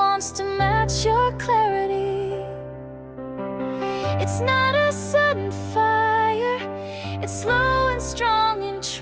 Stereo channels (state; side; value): identical; both; correlation 1.00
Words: to match your clarity. It's not a sudden fire, it's slow and strong and